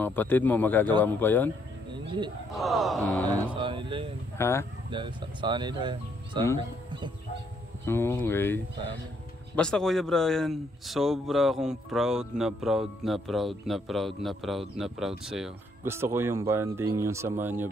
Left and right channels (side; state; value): both; normal; correlation 0.71